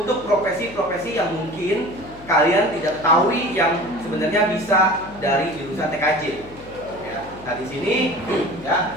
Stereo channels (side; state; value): left; noise; hum, 19 dB below the sound